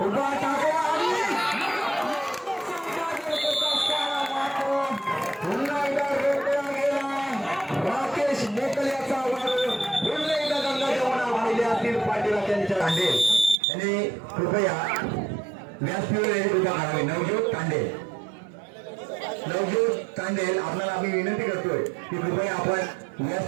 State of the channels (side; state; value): left; drops out; at 13.6 s